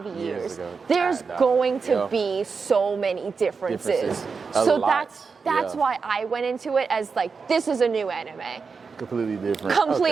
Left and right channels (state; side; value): quieter; left; 5.1 dB